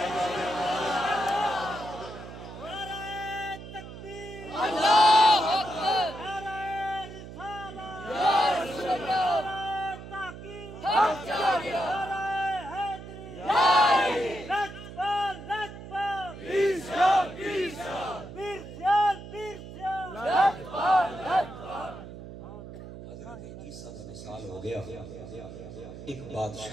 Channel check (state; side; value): noise; right; hum, 13 dB below the sound